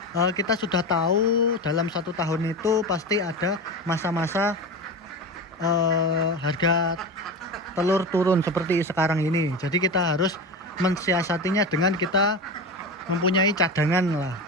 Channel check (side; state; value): both; normal; correlation 0.24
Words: kita sudah tahu dalam 1 tahun itu pasti ada masa-masa harga telur turun seperti sekarang ini. Jadi kita harus mensiasatinya dengan kita mempunyai cadangan lah.